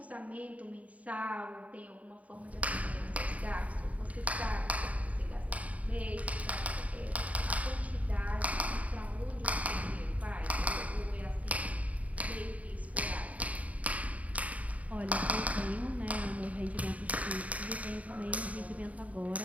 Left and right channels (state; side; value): late; left; 0.069 ms